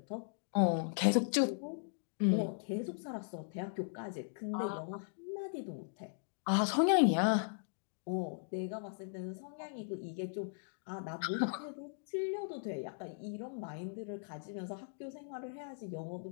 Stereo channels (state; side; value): silent; right; digital silence